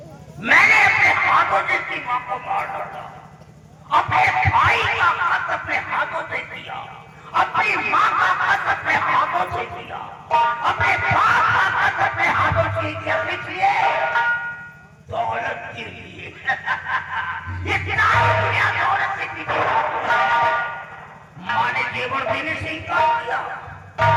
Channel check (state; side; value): identical; both; correlation 1.00